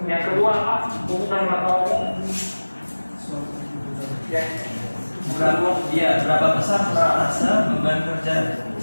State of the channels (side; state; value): both; inverted; correlation -1.00